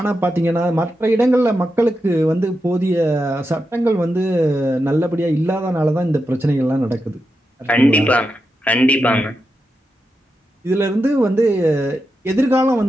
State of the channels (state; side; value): normal; both; correlation 0.88